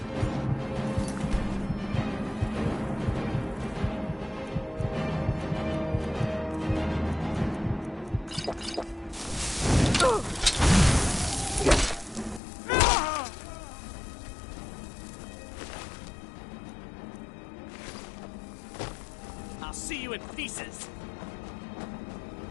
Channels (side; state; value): right; drops out; at 12.4 s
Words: I'll see you in pieces!